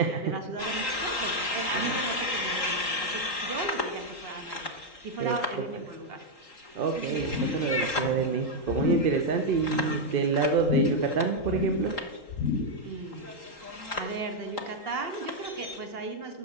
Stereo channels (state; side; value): late; right; 3.8 ms